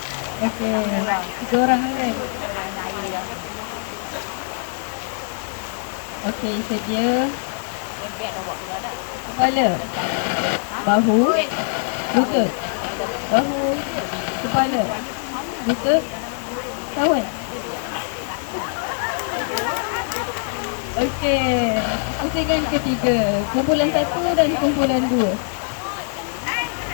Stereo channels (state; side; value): silent; right; 64 dB below the other